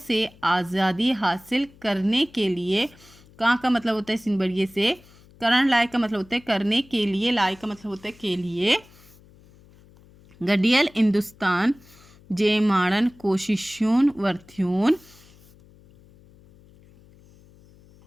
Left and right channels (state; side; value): noise; left; hum, 26 dB below the sound